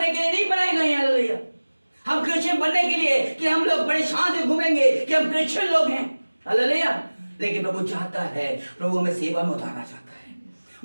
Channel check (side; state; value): both; inverted; correlation -1.00